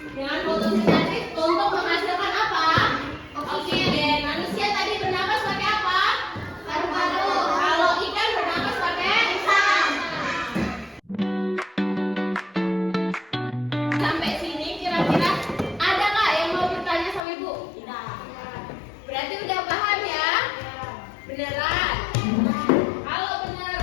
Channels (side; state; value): right; drops out; at 17.2 s